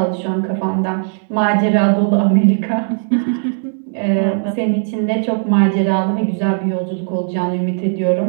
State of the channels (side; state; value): left; silent; 68 dB below the other